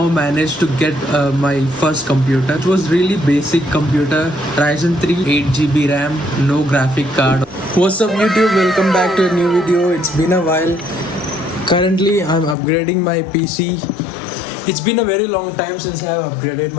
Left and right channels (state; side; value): drops out; right; at 12.6 s